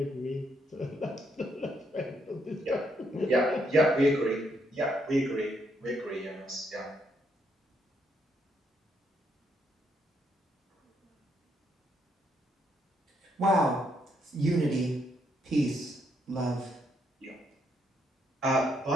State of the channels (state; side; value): normal; both; correlation 0.75